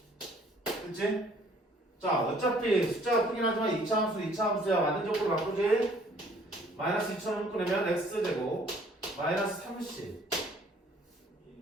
그치? 자, 어차피 숫자가 크긴 하지만 2차 함수 2차 함수야. 완전적으로 바꾸지? 마이너스 2000을 묶으려면 x제곱 마이너스 30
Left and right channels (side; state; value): both; normal; correlation 0.58